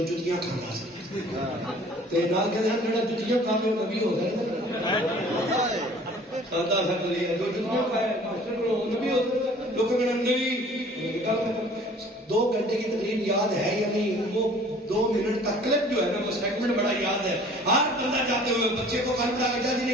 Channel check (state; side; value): normal; both; correlation 0.50